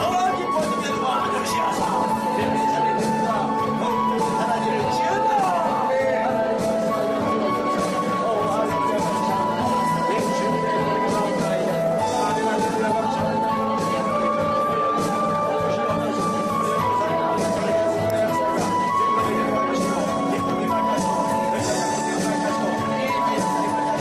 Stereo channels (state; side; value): identical; both; correlation 1.00